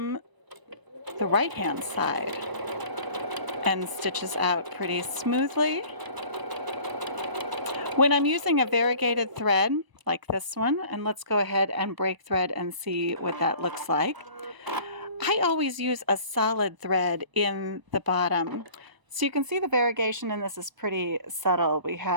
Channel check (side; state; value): left; late; 1.0 ms